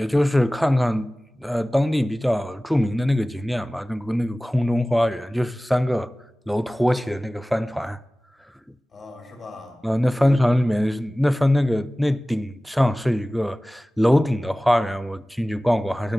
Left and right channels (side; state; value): both; normal; correlation 0.98